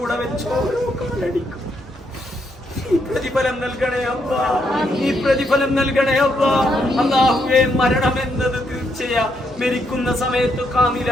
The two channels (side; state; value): both; normal; correlation 0.77